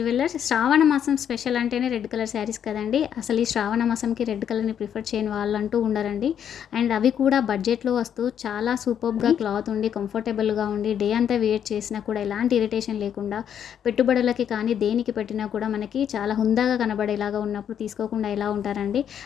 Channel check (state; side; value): quieter; right; 9.0 dB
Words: Shravana మాసం special అంటేనే red colour saris కదండి. అసలు ఈ శ్రావణ మాసంకి రెడ్ కలర్ని ప్రిఫర్ చేయని వాళ్ళంటూ ఉండరండి. అండ్ అవి కూడా బడ్జెట్లో వస్తూ చాలా సూపర్గా క్లాత్ ఉండి కంఫర్టబుల్గా ఉండి డే అంతా వేర్ చేసినా కూడా ఎలాంటి ఇరిటేషన్ లేకుండా పెట్టుబడులకి కానీ దేనికి పెట్టినా కూడా మనకి చాలా హుందాగా కనబడేలాగా ఉన్నప్పుడు తీసుకోకుండా ఎలా ఉంటారండి.